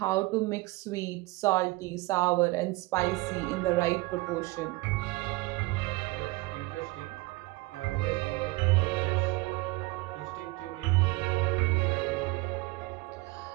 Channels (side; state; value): left; quieter; 22.2 dB